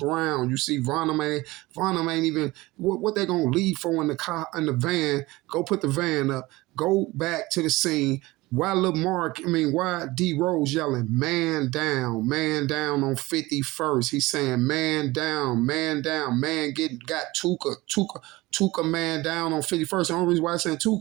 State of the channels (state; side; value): quieter; left; 20.4 dB